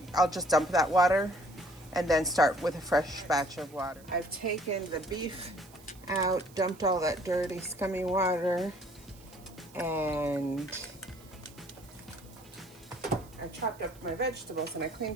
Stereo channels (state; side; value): noise; right; hiss, 24 dB below the sound